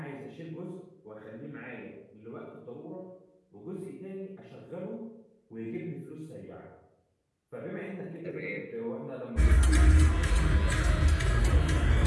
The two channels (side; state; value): both; identical; correlation 1.00